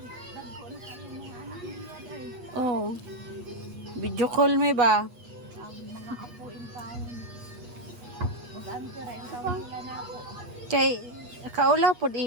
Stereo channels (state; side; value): late; left; 8.3 ms